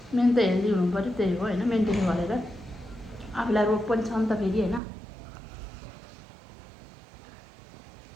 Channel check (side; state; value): left; drops out; at 4.8 s